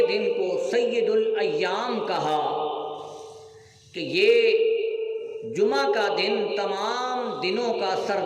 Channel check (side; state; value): both; identical; correlation 1.00